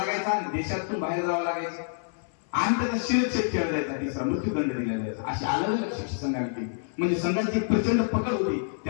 आणि देशातून बाहेर जावं लागायचं आणि त्याचा शिरच्छेद केला जायचा, तिसरा मृत्यूदंड दिला जायचा. अशी अलग अलग शिक्षा संघाने केली. म्हणजे संघाची प्रचंड पकड होती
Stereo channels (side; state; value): right; silent; 60 dB below the other